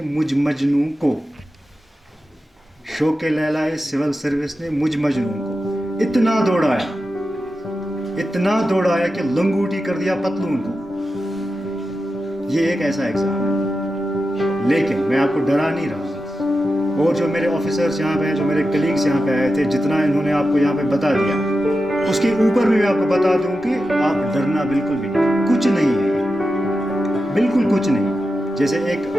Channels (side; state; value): both; normal; correlation 0.91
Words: मुझ मजनू को, शौक़े लैलाए सिविल सर्विस ने मुझ मजनू को इतना दौड़ाया कि लंगूटी कर दिया पतलून को. ये एक ऐसा एग्जाम है, लेकिन मैं आपको डरा नहीं रहा. और जो मेरे ऑफिसर्स यहाँ पे हैं, जो मेरे कलीग्स यहाँ पे आए थे, जितना इन्होंने आपको यहाँ पे बता दिया, उसके ऊपर भी मैं आपको बता दूं कि आप डरना बिल्कुल भी नहीं, कुछ नहीं है, बिल्कुल कुछ नहीं. जैसे एक